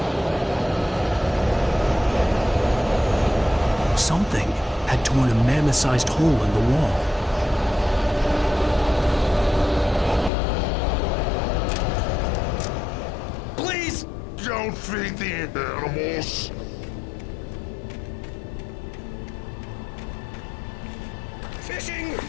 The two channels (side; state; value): right; drops out; at 10.3 s